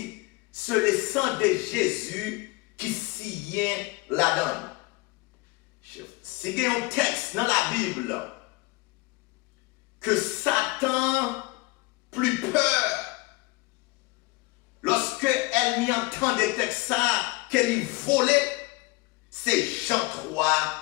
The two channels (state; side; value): quieter; right; 23.3 dB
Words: sur le sang de Jésus qui signe la donne. Si il y a un texte dans la Bible que Satan plus peur lorsque elle m'y entend des textes qu'elle y volait, c'est Jean 3,